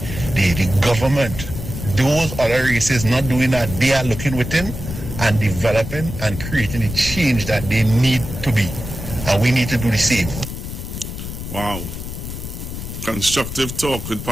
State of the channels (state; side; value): noise; left; rumble, 8 dB below the sound